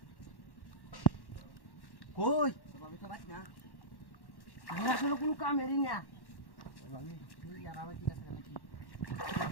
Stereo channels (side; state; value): right; late; 1.1 ms